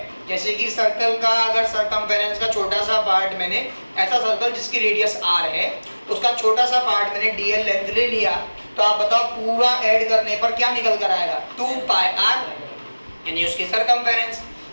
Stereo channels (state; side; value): inverted; both; correlation -1.00